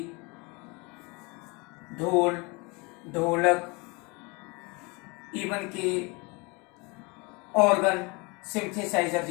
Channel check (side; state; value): right; quieter; 28.2 dB